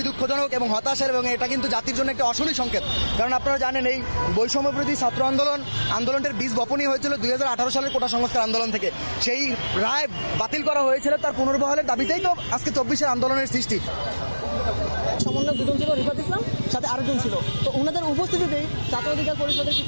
দুঃখজনক এবং হতাশার, এবং এটা কিন্তু জাতির জন্য একটা অশনি সংকেত। কারণ আপনারা জানেন এই বৈষম্য বিরোধী ছাত্র আন্দোলনটার বীজ বপনই হয়েছিল 2018 সালের কোটা সংস্কার আন্দোলন থেকে। সেই রায় বাতিল করা হয়েছিল, তার পুনর্বহালের দাবিতেই তো আজকে 24-এর আন্দোলনের সৃষ্টি। সমন্বয় দুজন ছিল, রিফাত ইসলাম, সাথে আরেকজন ছিল। তো ওনাদের উপস্থিতিতেই ছাত্র অধিকার পরিষদের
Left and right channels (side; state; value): both; inverted; correlation -1.00